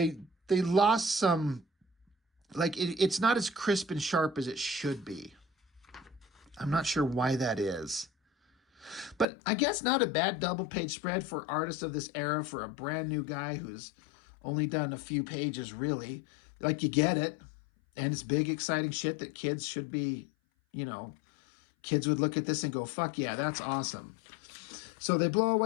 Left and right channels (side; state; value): right; drops out; at 9.2 s